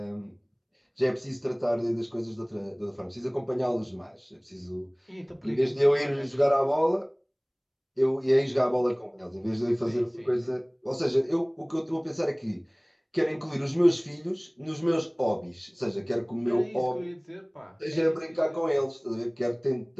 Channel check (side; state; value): both; identical; correlation 1.00